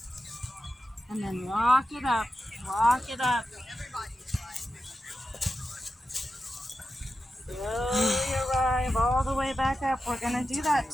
And then walk it up, walk it up. Slowly arrive all the way back up. We're gonna do that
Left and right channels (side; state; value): both; normal; correlation 0.91